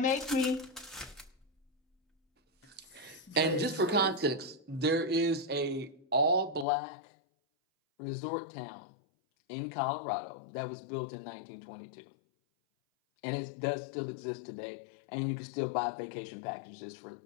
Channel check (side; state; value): right; drops out; at 6.7 s